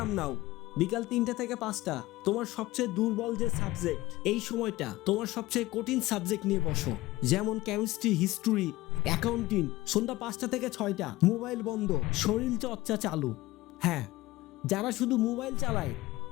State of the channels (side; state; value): right; quieter; 18.7 dB